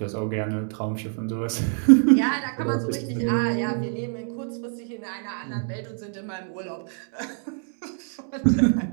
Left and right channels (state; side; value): silent; left; 61 dB below the other